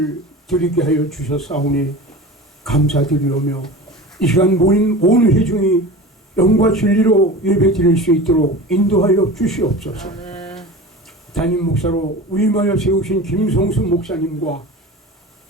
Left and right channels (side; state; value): both; normal; correlation 0.33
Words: 드리게 하여 주셨사오니 감사드리오며, 이 시간 모인 온 회중이 영과 진리로 예배 드릴 수 있도록 인도하여 주시옵소서. 담임 목사로 위임하여 세우신 김성수 목사님과